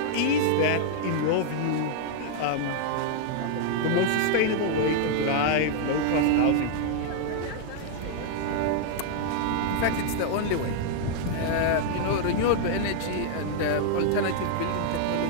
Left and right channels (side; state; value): both; different; correlation 0.00